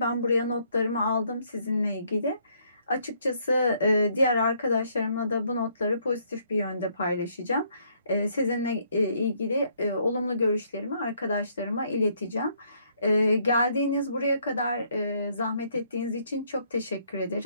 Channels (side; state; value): both; inverted; correlation -0.68